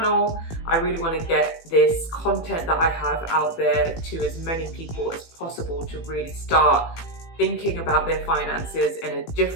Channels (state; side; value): late; right; 18 ms